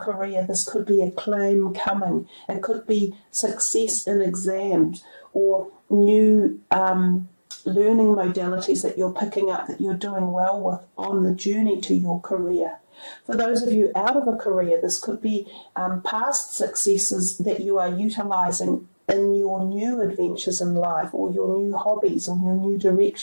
this could be acclaim coming. It could be success in exams or new learning modalities that you're picking up that you're doing well with on the journey to your career. For those of you out of a career, this could be past successes that you are utilising in your new adventures in life or your new hobbies or your new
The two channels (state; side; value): inverted; both; correlation -1.00